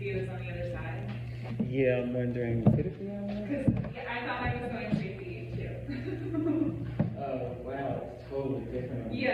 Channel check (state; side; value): identical; both; correlation 1.00